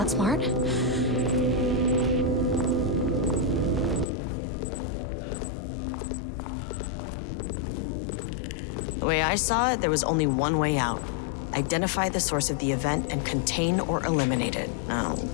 smart. The way I saw it, there was only one way out. Identify the source of the event and contain or eliminate it. Now,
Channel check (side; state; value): right; drops out; at 4.0 s